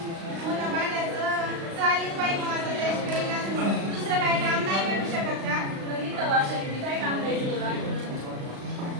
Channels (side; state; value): left; late; 36 ms